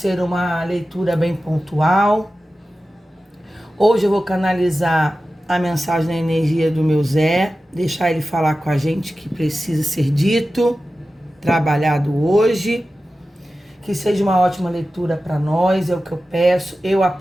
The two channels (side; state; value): both; normal; correlation 0.94